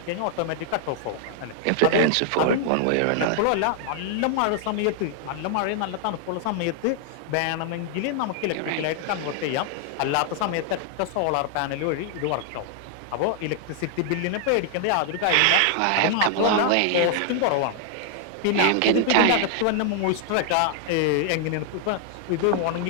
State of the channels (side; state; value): both; different; correlation 0.00